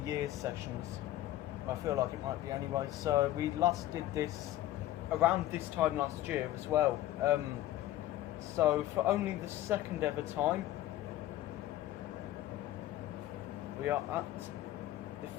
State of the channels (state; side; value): quieter; right; 14.4 dB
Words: year sessions. I feel like it might be anyway. So we last did this around this time last year as well. So for only the second ever time, we are at the